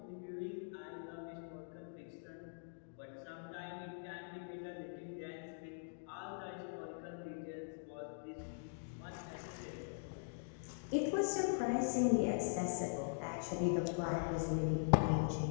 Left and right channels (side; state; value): right; silent; digital silence